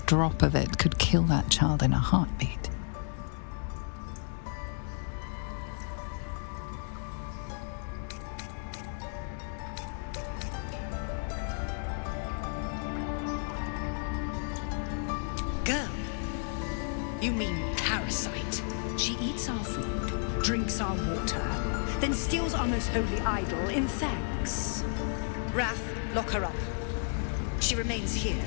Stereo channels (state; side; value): silent; right; 56 dB below the other